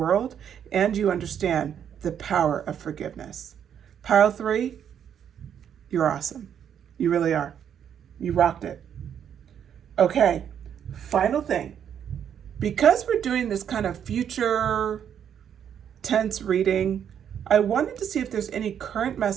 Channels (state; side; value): quieter; left; 8.8 dB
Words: and you understand the power of forgiveness. Pile 3, you're awesome. You really are. You rocked it. Okay, final thing. Because we're doing this kind of future tense reading, I wanted to see if there's any current